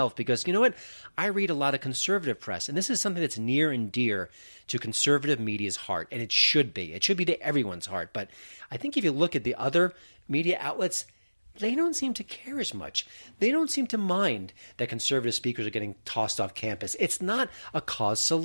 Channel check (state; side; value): inverted; both; correlation -1.00